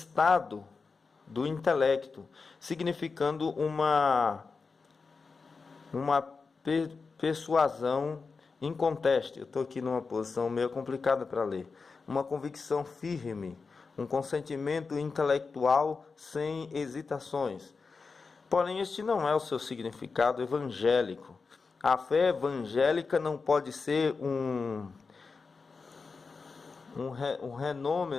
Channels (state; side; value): quieter; right; 4.6 dB